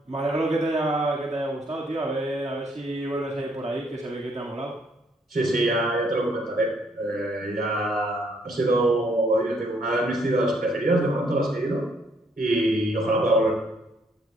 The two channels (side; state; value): both; normal; correlation 0.68